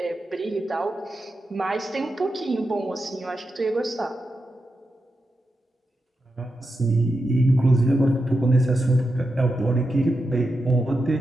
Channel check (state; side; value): normal; both; correlation 0.88